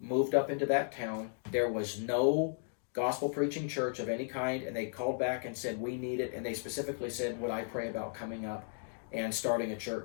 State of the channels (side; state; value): right; silent; digital silence